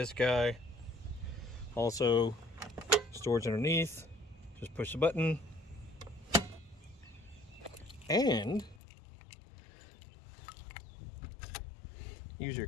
guy. Also, storage underneath, just push the button. And use your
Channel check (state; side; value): drops out; right; at 8.8 s